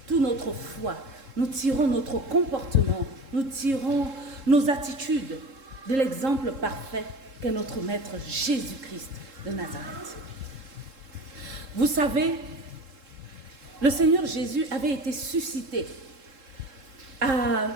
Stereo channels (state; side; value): late; left; 3.7 ms